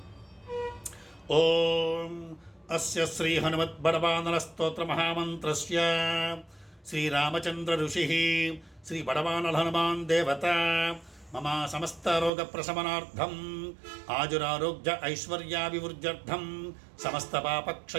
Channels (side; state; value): left; drops out; at 12.3 s